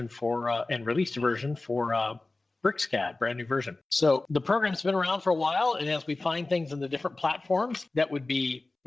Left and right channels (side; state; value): right; quieter; 3.2 dB